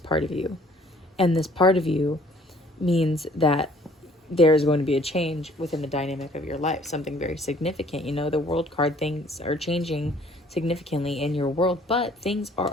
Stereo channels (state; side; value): normal; both; correlation 0.57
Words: of you. And this part of you means that there's going to be a change within the dynamic of your life, something very significant. You know, the world card, things are changing significantly in your world, but things are